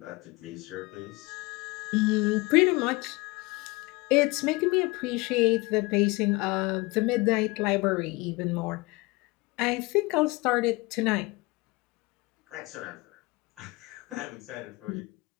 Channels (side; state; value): right; quieter; 24.1 dB